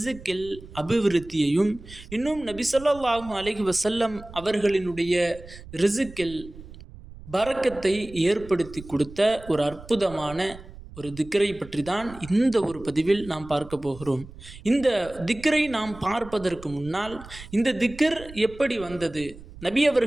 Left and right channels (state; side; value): noise; right; rumble, 17 dB below the sound